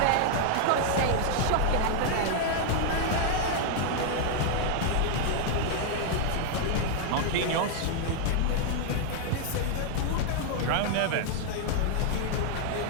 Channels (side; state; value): both; different; correlation 0.00